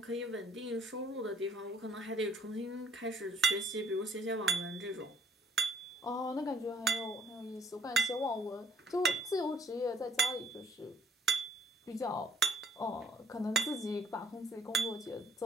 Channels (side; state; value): both; normal; correlation 0.61